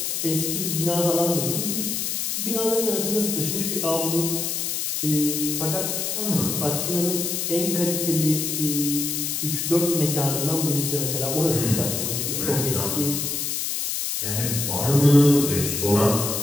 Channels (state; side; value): noise; left; hiss, 1 dB below the sound